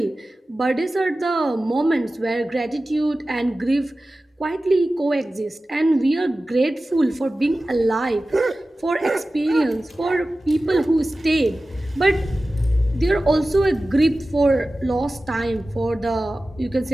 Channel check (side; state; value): both; normal; correlation 0.96